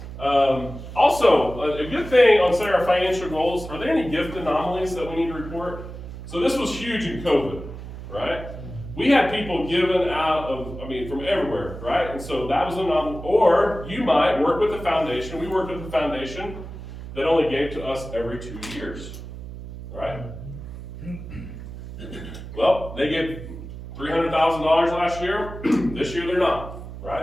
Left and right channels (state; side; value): noise; right; hum, 11 dB below the sound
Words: Also, a good thing on setting our financial goals, are there any gift anomalies that we need to report? So this was huge in COVID, right? We had people given out from everywhere, right? And so that was an anomaly. Or you might work with the foundation. We worked with the foundation that only gave to us every 2 years, right? Well, they gave $300,000 last year. This year they're not,